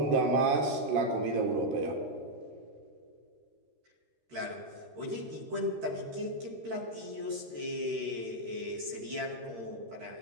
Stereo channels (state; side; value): late; left; 13 ms